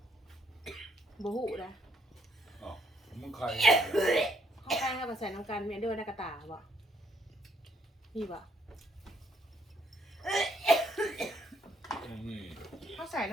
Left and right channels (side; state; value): both; normal; correlation 0.70